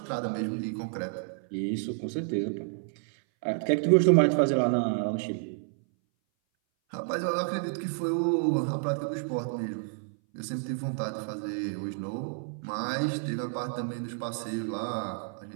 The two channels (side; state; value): left; silent; 58 dB below the other